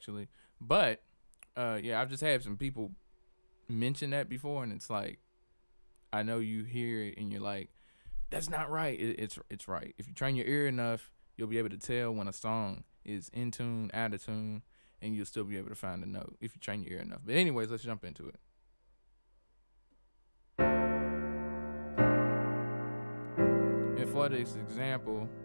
But yeah, I've just had some people mention that before, and it's like I know you hear it and you're like, that's not right. It's right. If you train your ear enough, you'll be able to tell when a song is in tune, out of tune, and you'll still be able to find a note if you train your ear enough. But anyways, let's jump into it. And for this example,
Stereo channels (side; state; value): both; inverted; correlation -1.00